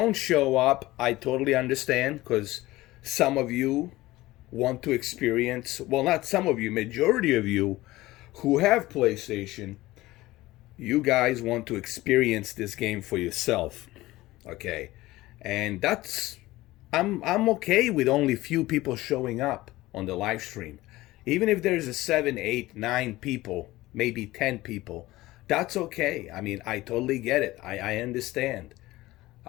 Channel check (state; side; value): quieter; right; 18.1 dB